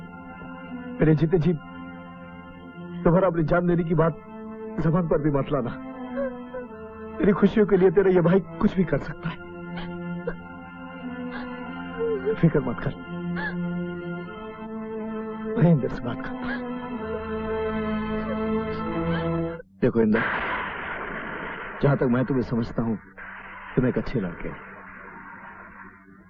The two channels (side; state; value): both; identical; correlation 1.00